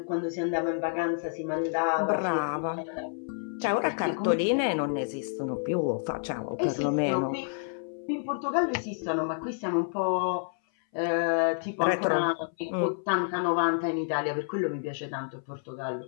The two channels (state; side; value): silent; right; 59 dB below the other